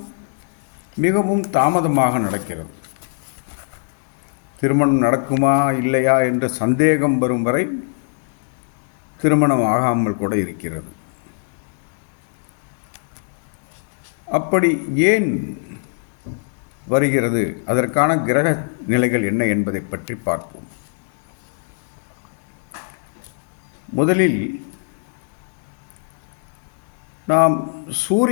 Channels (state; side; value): silent; right; digital silence